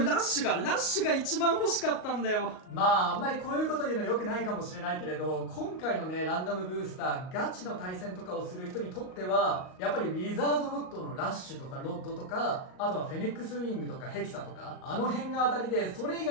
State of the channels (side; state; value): right; late; 38 ms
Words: ラッシュが一番欲しかったんだよ。まああんまりこういうこと言うの良くないかもしれないけれど、今回のねランダムブースターガチの対戦とかをする人にとってはやっぱりウィザードロッドのラッシュとかロッドとか、あとはフェニックスウィングとかヘキサとか、あの辺が当たりで、それ以